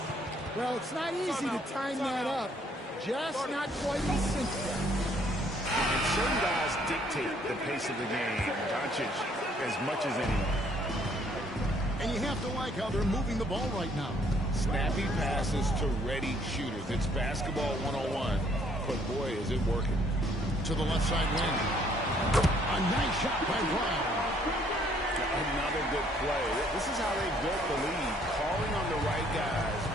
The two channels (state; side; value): normal; both; correlation 0.64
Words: Well, it's not easy to time that up. Just not quite as simple. And certain guys dictate the pace of the game. Doncic as much as anyone. And you have to like how they're moving the ball right now. Snappy passes to ready shooters. It's basketball 101, but boy, is it working. To the left side wing. A nice shot by Brown. Another good play. This is how they built the lead, calling on the right guys